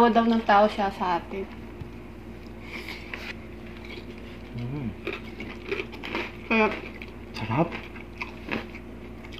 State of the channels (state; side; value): identical; both; correlation 1.00